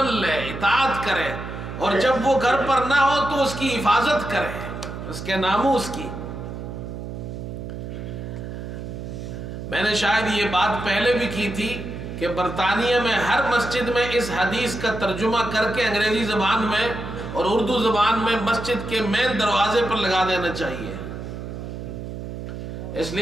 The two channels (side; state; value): right; noise; hum, 8 dB below the sound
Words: لے، اطاعت کرے، اور جب وہ گھر پر نہ ہو تو اس کی حفاظت کرے، اس کے ناموس کی۔ میں نے شاید یہ بات پہلے بھی کی تھی کہ برطانیہ میں ہر مسجد میں اس حدیث کا ترجمہ کر کے انگریزی زبان میں اور اردو زبان میں مسجد کے مین دروازے پر لگا دینا چاہیے، اس